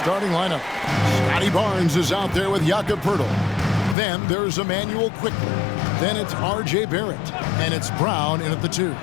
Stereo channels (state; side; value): drops out; right; at 4.0 s